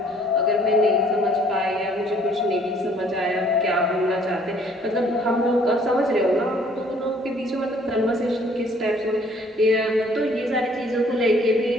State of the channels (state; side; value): normal; both; correlation 0.60